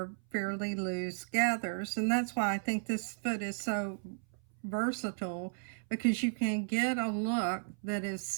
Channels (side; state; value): left; silent; 55 dB below the other